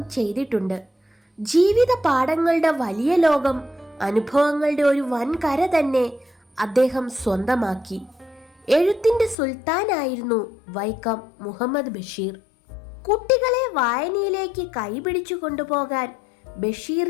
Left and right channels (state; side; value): drops out; right; at 9.3 s